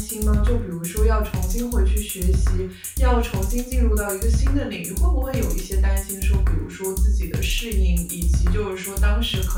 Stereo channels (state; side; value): identical; both; correlation 1.00